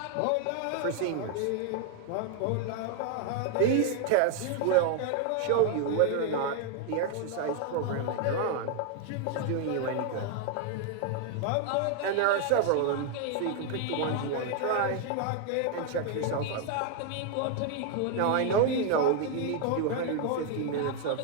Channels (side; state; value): both; different; correlation 0.00